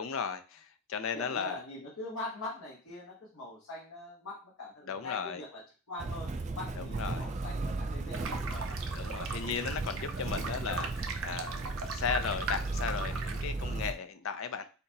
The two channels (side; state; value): both; normal; correlation 0.31